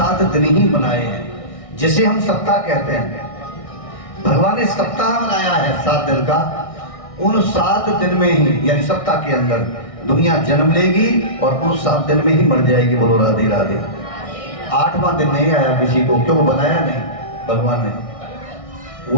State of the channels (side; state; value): right; late; 1.6 ms